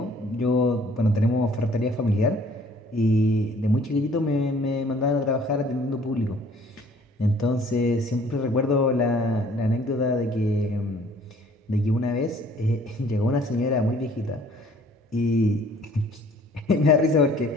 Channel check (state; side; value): normal; both; correlation 0.56